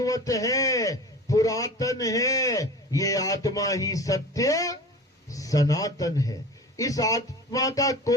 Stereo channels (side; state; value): both; normal; correlation 0.36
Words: है, पुरातन है। ये आत्मा ही सत्य सनातन है। इस आत्मा का